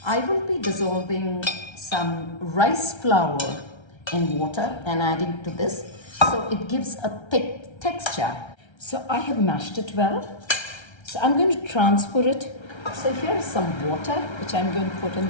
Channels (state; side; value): late; right; 1.3 ms